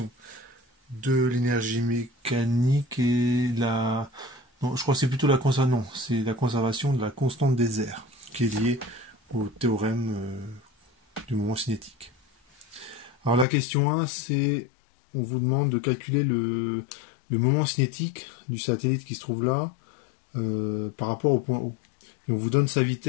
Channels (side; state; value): right; drops out; at 13.5 s